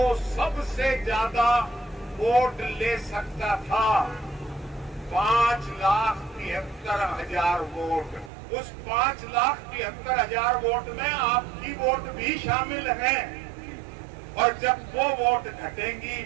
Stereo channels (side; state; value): left; drops out; at 8.3 s